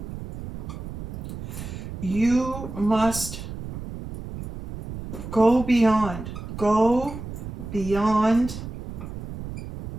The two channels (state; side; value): noise; right; rumble, 9 dB below the sound